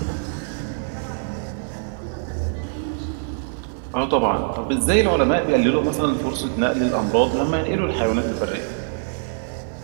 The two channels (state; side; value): silent; left; 61 dB below the other